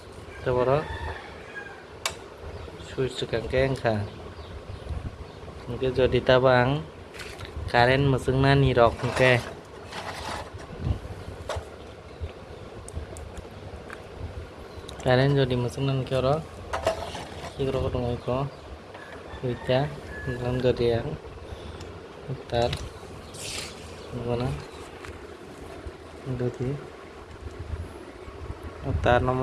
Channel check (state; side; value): identical; both; correlation 1.00